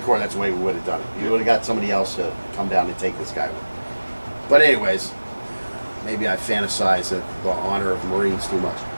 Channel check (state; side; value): inverted; both; correlation -1.00